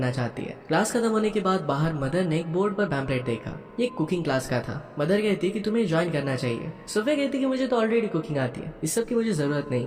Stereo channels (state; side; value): identical; both; correlation 1.00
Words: चाहती है। क्लास खत्म होने के बाद बाहर मदर ने एक बोर्ड पर पैम्पलेट देखा। ये कुकिंग क्लास का था। मदर कहती कि तुम्हें ज्वाइन करना चाहिए। सोफिया कहती कि मुझे तो ऑलरेडी कुकिंग आती है, इस सब की मुझे जरूरत नहीं